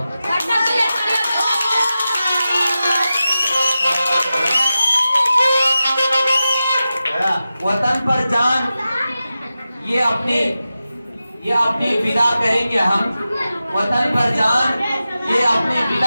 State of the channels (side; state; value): both; inverted; correlation -0.93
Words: وطن پر جان یہ اپنی فدا کریں گے ہم، وطن پر جان یہ اپنی